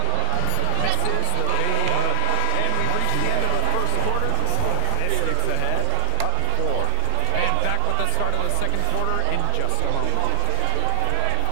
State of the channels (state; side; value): different; both; correlation 0.00